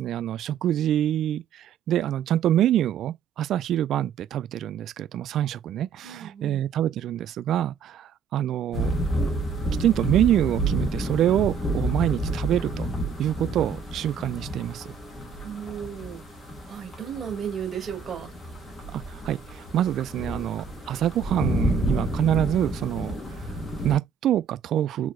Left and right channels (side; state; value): left; quieter; 7.3 dB